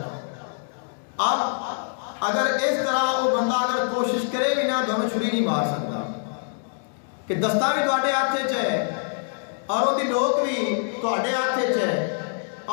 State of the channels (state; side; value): silent; right; digital silence